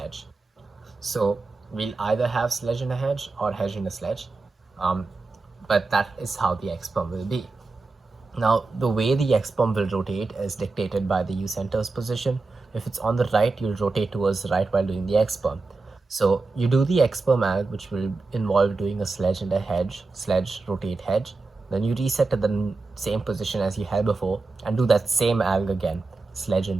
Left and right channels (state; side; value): quieter; left; 3.7 dB